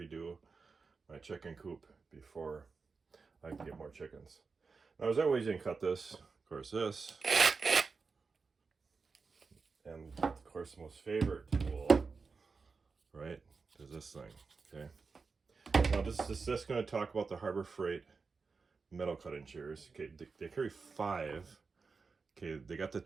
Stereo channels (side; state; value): left; quieter; 4.7 dB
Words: my chicken coop before I can get more chickens. Now, there's other ways you can cut this. Of course, this, and of course, the most favorite tool, right, is this thing. Okay. Now, this is just going to talk about the Harbor Freight metal cutting shears. Okay, they carry 5. Okay, they got the